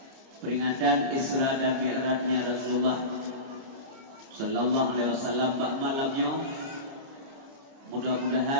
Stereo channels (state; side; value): late; left; 29 ms